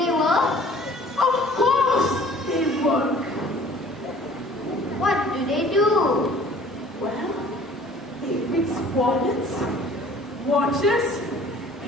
work? Of course they work. What do they do? Well, they fix wallets, watches,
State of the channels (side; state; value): both; normal; correlation 0.51